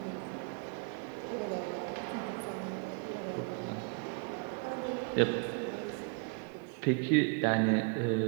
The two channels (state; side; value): quieter; left; 37.3 dB